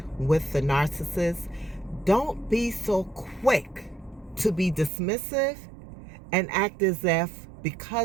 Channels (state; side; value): drops out; left; at 4.9 s